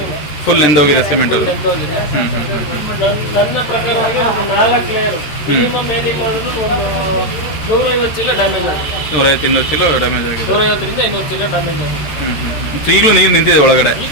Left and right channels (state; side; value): late; right; 13 ms